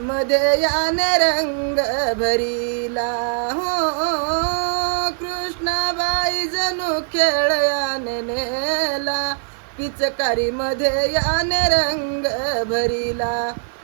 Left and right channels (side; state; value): left; silent; digital silence